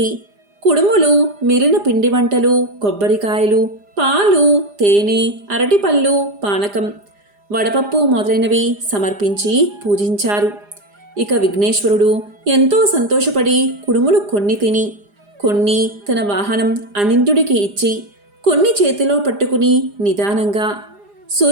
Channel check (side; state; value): left; late; 4.9 ms